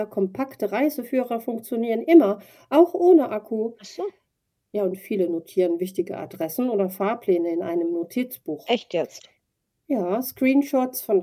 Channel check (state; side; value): identical; both; correlation 1.00